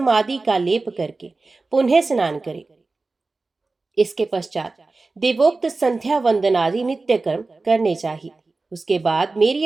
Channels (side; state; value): left; quieter; 3.6 dB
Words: आदि का लेप करके पुनः स्नान करे। इसके पश्चात देवोक्त संध्या वंदन आदि नित्य कर्म करने चाहिए। उसके बाद मेरी